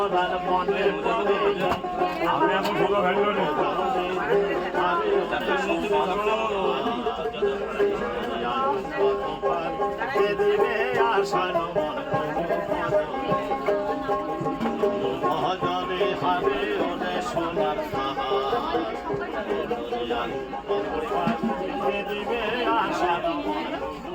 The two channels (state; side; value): identical; both; correlation 1.00